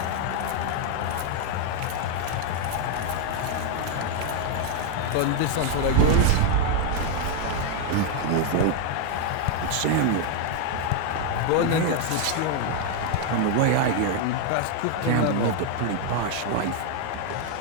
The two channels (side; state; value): both; different; correlation 0.00